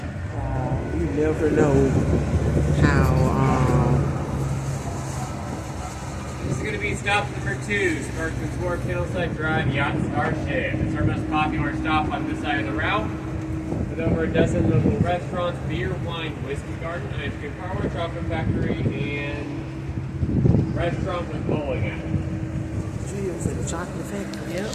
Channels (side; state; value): both; identical; correlation 1.00